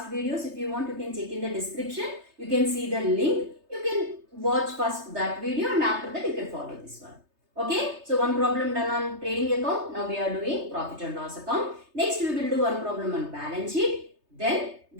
videos. If you want, you can check in the description. You can see the link. You can watch first that video and after that you can follow this one. Okay, so one problem done on trading account. Now we are doing profit and loss account. Next we will do one problem on balance sheet. Then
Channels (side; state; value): left; late; 3.3 ms